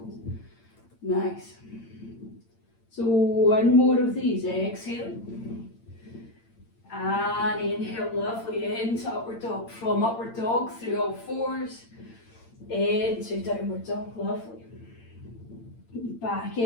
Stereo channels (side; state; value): right; late; 8.8 ms